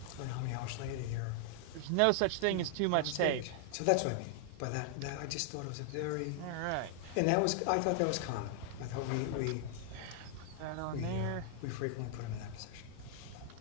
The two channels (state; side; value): different; both; correlation 0.00